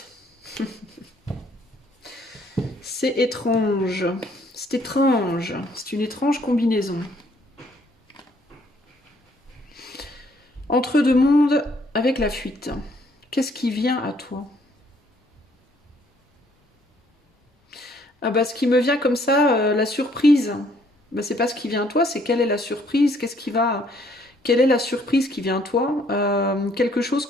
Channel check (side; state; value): both; normal; correlation 0.65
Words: C'est étrange. C'est étrange. C'est une étrange combinaison. Entre deux mondes avec la fuite. Qu'est-ce qui vient à toi? Ah bah ce qui me vient comme ça, la surprise. Bah c'est pas ce qui vient à toi, c'est quelle est la surprise? Quelle est la surprise qui vient à toi? Quelque chose